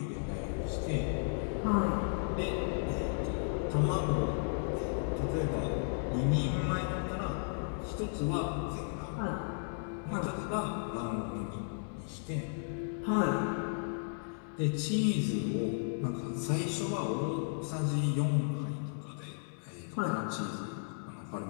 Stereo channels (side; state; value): right; silent; digital silence